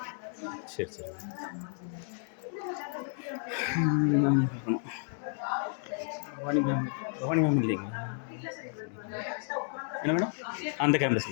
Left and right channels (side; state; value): right; silent; 56 dB below the other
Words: சரி சரி பார்க்கணும். பவானி மேம் இல்லைங்களா? என்ன மேடம்? அந்த கேம்பஸ்